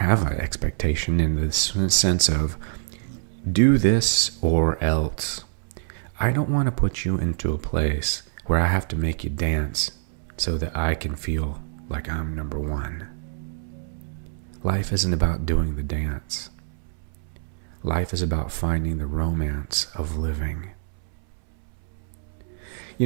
an expectation in the sense of do this or else. I don't want to put you into a place where I have to make you dance so that I can feel like I'm number one. Life isn't about doing the dance. Life is about finding the romance of living.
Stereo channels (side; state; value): left; silent; 62 dB below the other